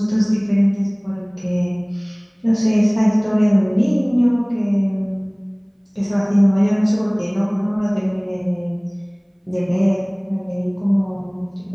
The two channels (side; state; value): both; identical; correlation 1.00